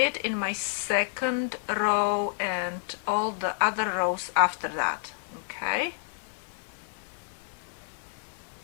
in my second row and all the other rows after that. Okay,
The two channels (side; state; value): right; silent; 58 dB below the other